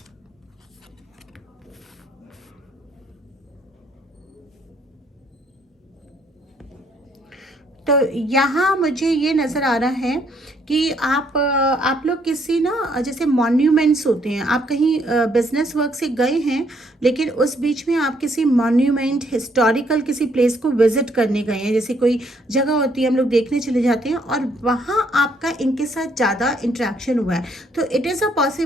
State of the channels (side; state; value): both; normal; correlation 0.69